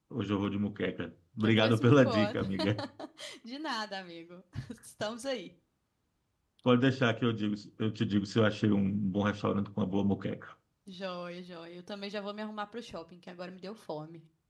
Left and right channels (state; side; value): identical; both; correlation 1.00